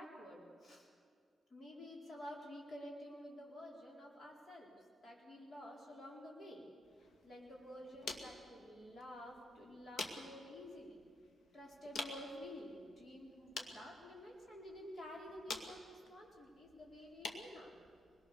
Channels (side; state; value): both; normal; correlation 0.76